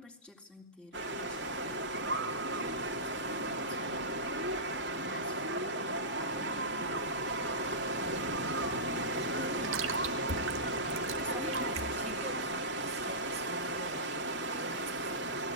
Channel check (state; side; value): normal; both; correlation -0.19